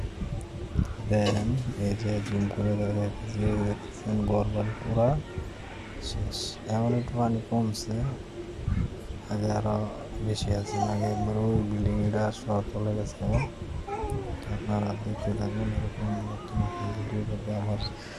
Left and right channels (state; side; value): identical; both; correlation 1.00